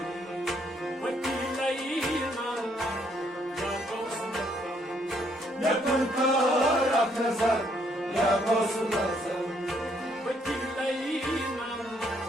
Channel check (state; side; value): normal; both; correlation 0.70